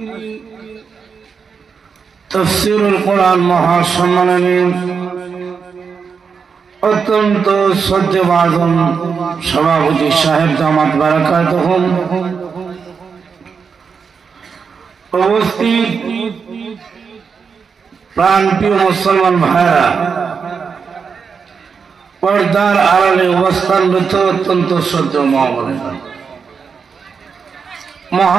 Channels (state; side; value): quieter; left; 5.8 dB